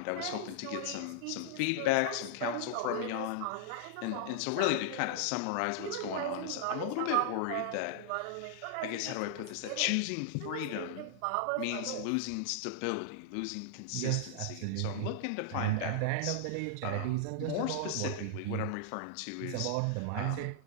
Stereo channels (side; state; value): both; different; correlation -0.01